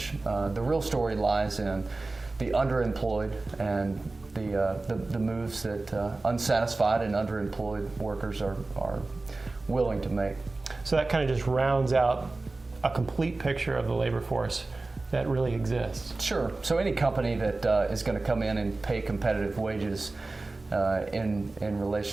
The real story lies in the underemployed and the moves that unsatisfied and underemployed workers are willing to make. So that kind of just rounds out a complete picture of the labor force that really exists. Sure. So any company that is going to come in and pay competitive wages in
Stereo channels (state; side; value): quieter; left; 3.3 dB